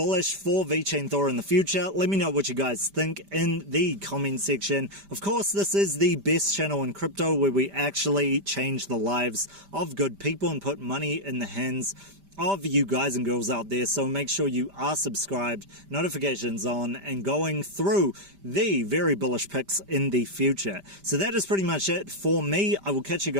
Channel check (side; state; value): left; late; 5.1 ms